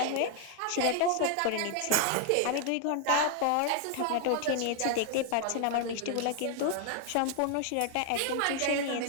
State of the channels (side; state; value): both; different; correlation 0.00